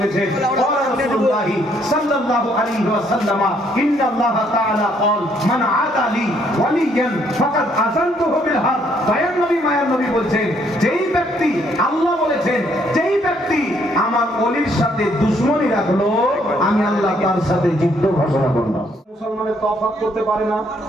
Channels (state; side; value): normal; both; correlation 0.68